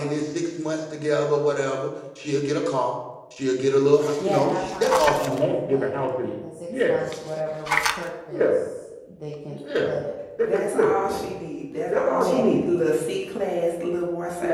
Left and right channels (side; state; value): both; identical; correlation 1.00